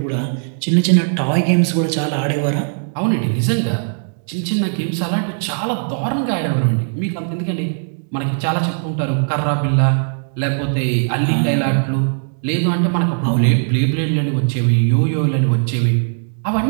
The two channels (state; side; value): silent; left; digital silence